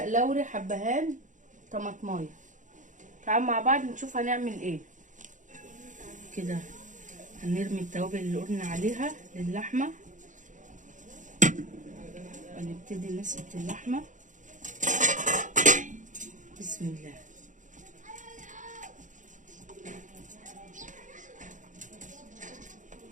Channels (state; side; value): late; left; 0.37 ms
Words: لوري، حبهان، طماطمايه. تعالوا مع بعض نشوف هنعمل ايه. كده هنرمي التوابل اللي قلنا عليها للحمه ونبتدي نسقط اللحمه. بسم الله.